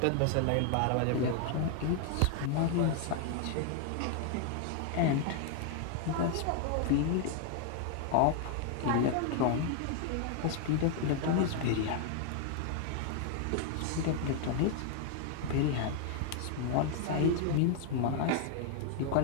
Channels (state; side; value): different; both; correlation 0.00